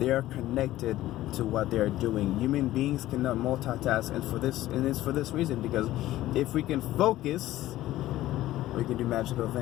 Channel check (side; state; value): right; quieter; 15.1 dB